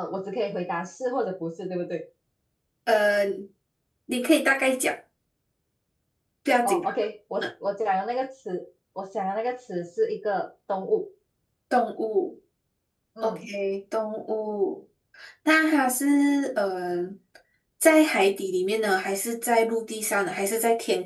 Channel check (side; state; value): both; identical; correlation 1.00